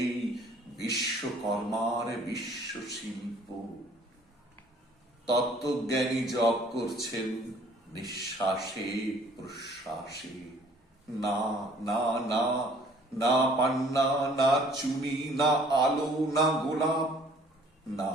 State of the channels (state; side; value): normal; both; correlation 0.56